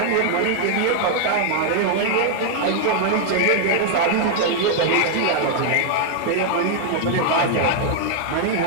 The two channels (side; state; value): both; different; correlation 0.00